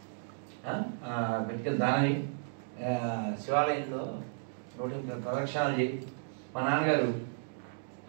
పెట్టుకెళ్ళి దానవి శివాలయంలో ప్రదక్షిణాలు చేయి. మా నాన్నగారు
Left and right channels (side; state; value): left; silent; digital silence